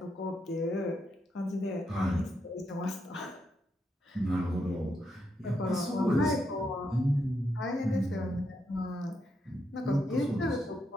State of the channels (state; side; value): normal; both; correlation 0.81